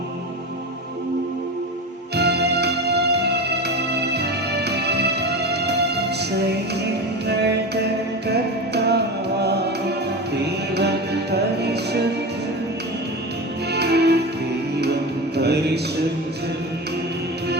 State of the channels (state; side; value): normal; both; correlation 0.26